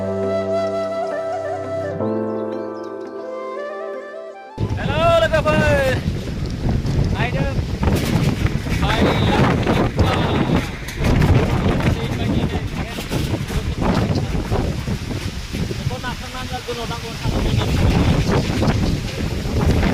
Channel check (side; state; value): both; identical; correlation 1.00